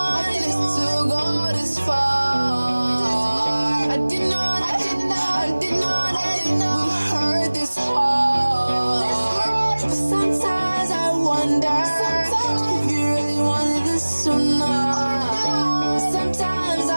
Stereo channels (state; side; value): inverted; both; correlation -1.00